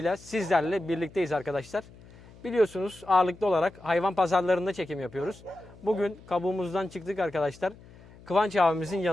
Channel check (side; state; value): left; noise; hum, 22 dB below the sound